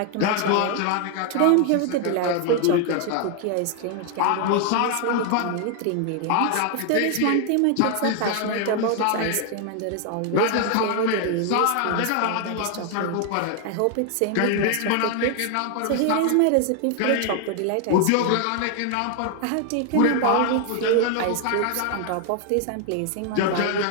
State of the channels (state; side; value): different; both; correlation 0.00